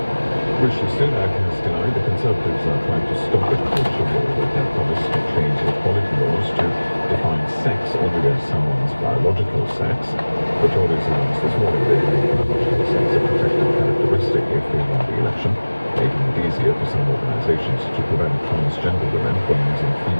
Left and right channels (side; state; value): both; inverted; correlation -1.00